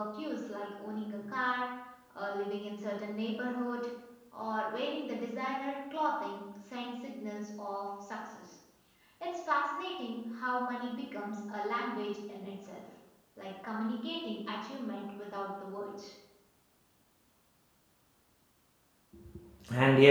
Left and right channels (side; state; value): both; identical; correlation 1.00